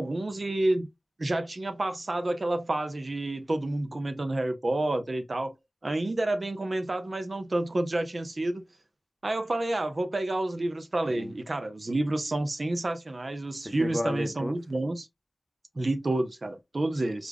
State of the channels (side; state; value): both; normal; correlation 0.98